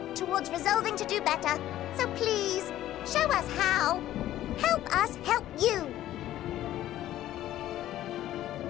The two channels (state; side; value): quieter; right; 13.4 dB